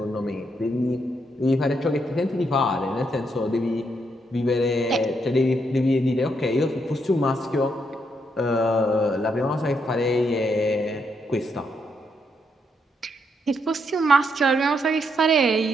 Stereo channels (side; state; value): both; normal; correlation 0.77